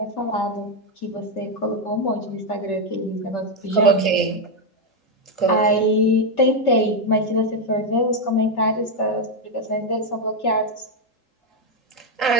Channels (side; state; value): right; late; 3.7 ms